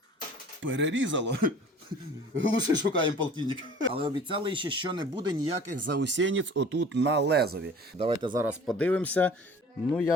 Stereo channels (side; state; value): both; normal; correlation 0.46